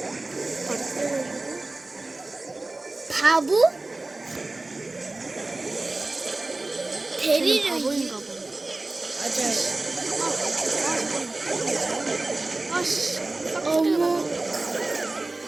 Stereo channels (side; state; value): left; quieter; 3.1 dB